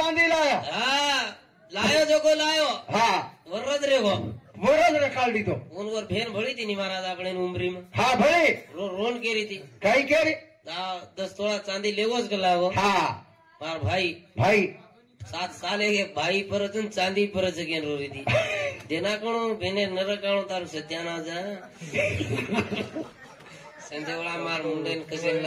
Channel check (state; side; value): identical; both; correlation 1.00